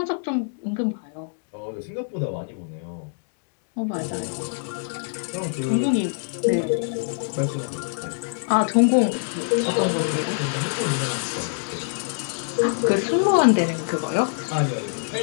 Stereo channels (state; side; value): silent; right; digital silence